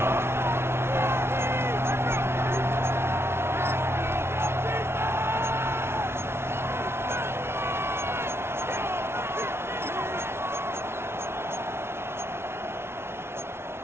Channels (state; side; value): late; left; 0.12 ms